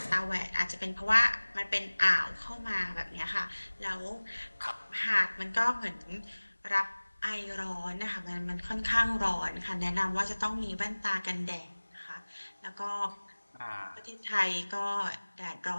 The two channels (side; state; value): both; inverted; correlation -1.00